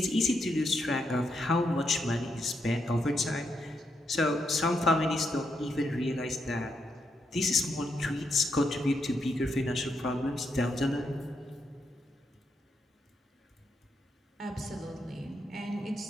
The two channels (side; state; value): both; normal; correlation 0.80